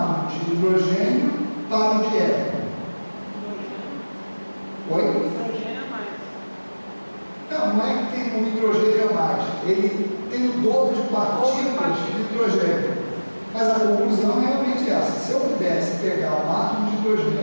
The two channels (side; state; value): both; inverted; correlation -1.00